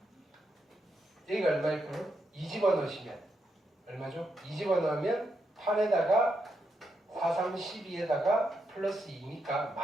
여기가 얼마일까요? 2 집어넣으시면 얼마죠? 2 집어넣으면 8에다가 4, 3, 12에다가 플러스 2니까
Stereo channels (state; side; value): normal; both; correlation 0.82